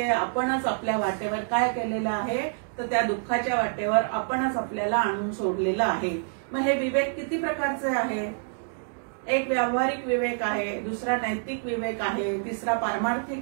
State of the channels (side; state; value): left; silent; digital silence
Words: आपणच आपल्या वाटेवर काय केलेलं आहे तर त्या दुःखाच्या वाटेवर आपणच आपल्याला आणून सोडलेलं आहे. मग हे विवेक किती प्रकारचे आहे? एक व्यावहारिक विवेक आहे, दुसरा नैतिक विवेक आहे, तिसरा